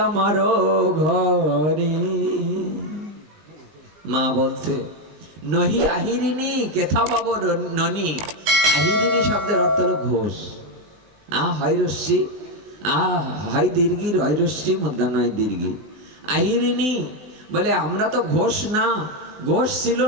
আমার ঘরে। মা বলছে, নহি আহিরিণী কেথা পাব ননী। আহিরিণী শব্দের অর্থ হলো ঘোষ। হয় রশ্মি, হয় দীর্ঘির, হয় রশ্মি, মধ্যাহ্নয় দীর্ঘি। আহিরিণী বলে, আমরা তো ঘোষ না, ঘোষ ছিল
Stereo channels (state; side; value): late; left; 20 ms